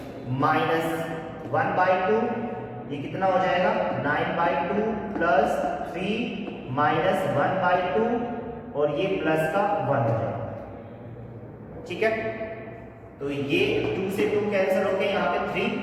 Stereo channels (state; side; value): identical; both; correlation 1.00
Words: -1/2, ये कितना हो जाएगा 9/2 + 3 -1/2 और ये प्लस का 1 हो जाएगा, ठीक है। तो ये 2 से 2 कैंसिल हो गए, यहाँ पे 3